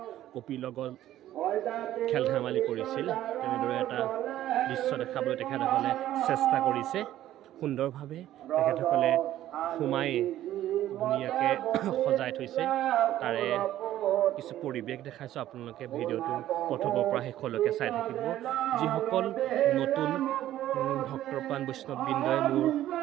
কপিৰ লগত খেল ধেমালি কৰিছিল তেনেদৰে এটা দৃশ্য দেখাবলৈ তেখেতসকলে চেষ্টা কৰিছে। সুন্দৰভাৱে তেখেতসকলে সোমাই ধুনীয়াকৈ সজাই থৈছে। তাৰে কিছু পৰিৱেশ দেখাইছোঁ, আপোনালোকে ভিডিঅ'টো প্ৰথমৰ পৰা শেষলৈকে চাই থাকিব। যিসকল নতুন ভক্তৰ প্ৰাণ বৈষ্ণৱবৃন্দই মোৰ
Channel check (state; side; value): quieter; left; 13.2 dB